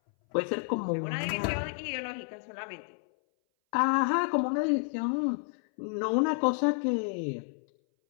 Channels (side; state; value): right; silent; 58 dB below the other